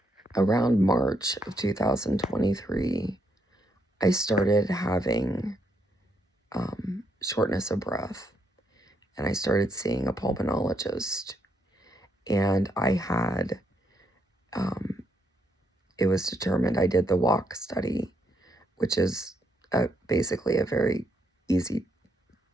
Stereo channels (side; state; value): both; normal; correlation 0.76